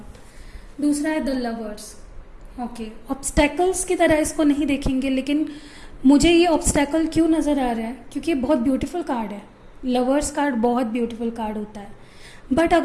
दूसरा है द लवर्स। ओके, ऑब्स्टैकल्स की तरह इसको नहीं देखेंगे, लेकिन मुझे ये ऑब्स्टैकल क्यों नज़र आ रहा है, क्योंकि ये बहुत ब्यूटीफुल कार्ड है। लवर्स कार्ड बहुत ब्यूटीफुल कार्ड होता है, बट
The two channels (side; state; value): both; identical; correlation 1.00